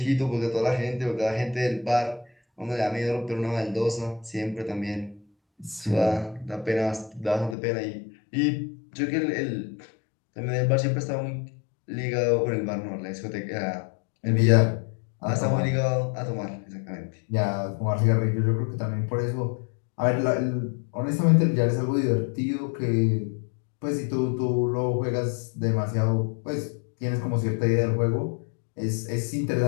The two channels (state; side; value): drops out; right; at 7.6 s